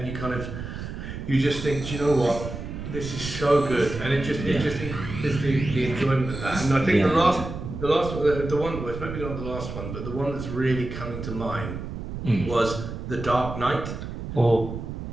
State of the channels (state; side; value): noise; right; rumble, 8 dB below the sound